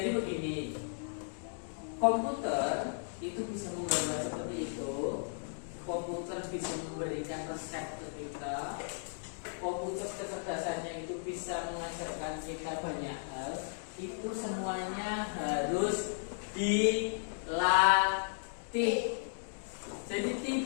begini, komputer itu bisa menggambar seperti itu. Komputer bisa memberikan resep ke kita. Komputer kecerdasannya itu bisa mengajarkan kita banyak hal. Itu semuanya harus dilatih. Jadi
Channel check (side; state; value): right; silent; digital silence